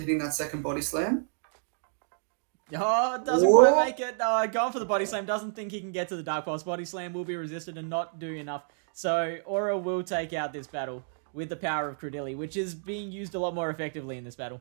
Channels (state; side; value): silent; left; digital silence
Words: that second body slam. Oh, it doesn't quite make it. Going for the body slam. Doesn't think he can get to the Dark Pulse. Body slam will be resisted and not do enough. So Aura will take out this battle with the power of Cradilly, which is being used a lot more effectively in this battle.